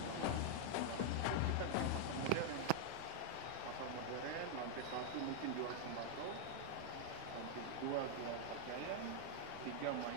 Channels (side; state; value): both; different; correlation 0.00